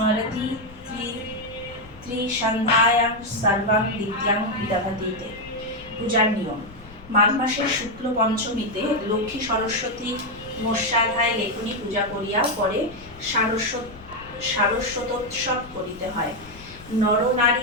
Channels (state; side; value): noise; left; rumble, 20 dB below the sound